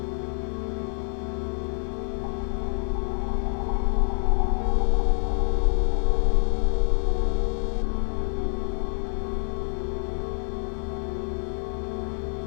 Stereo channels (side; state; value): right; silent; 61 dB below the other